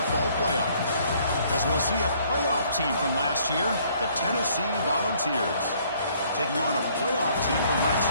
playoff. As we'll see a playoff team from last year, the Tennessee Volunteers, taking on a playoff team from last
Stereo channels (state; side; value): inverted; both; correlation -0.62